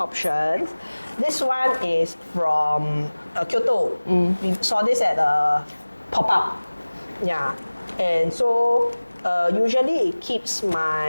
options. This one is from Kyoto. We saw this at a pop-up. Yeah, and so usually it keeps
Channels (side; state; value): both; inverted; correlation -1.00